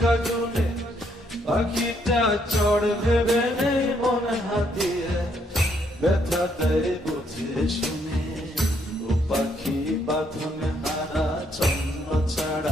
গুণে পাখিটা চড় ভেবে নেই মন হাতিরে ব্যথা দেয় বুঝে শুনে ও পাখি বাঁধনে হারা ছন্ন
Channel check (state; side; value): normal; both; correlation 0.72